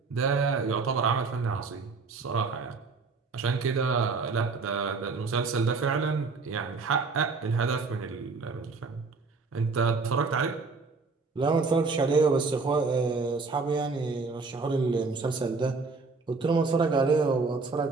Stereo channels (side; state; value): left; quieter; 4.3 dB